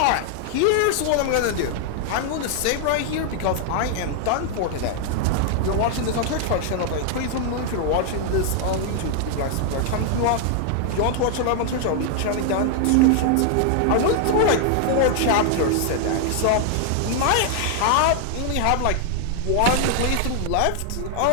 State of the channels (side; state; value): both; different; correlation 0.00